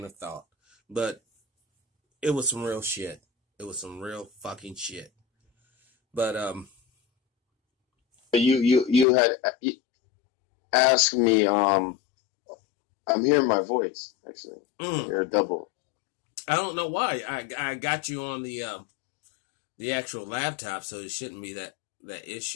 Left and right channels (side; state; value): right; drops out; at 9.1 s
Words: of thought, but it was some real shit. It was some real fucking shit. But You had asked me. I'm hearing my voice actually. You're a double. I don't know why. I got you on the actual laptop, so it shouldn't be that